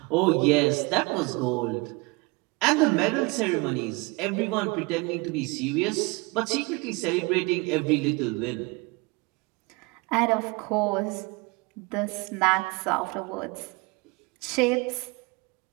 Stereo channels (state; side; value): quieter; left; 26.9 dB